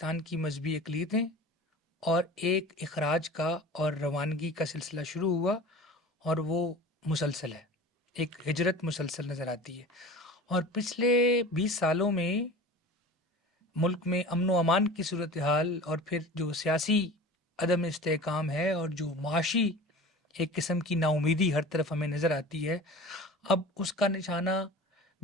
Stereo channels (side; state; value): both; normal; correlation 0.37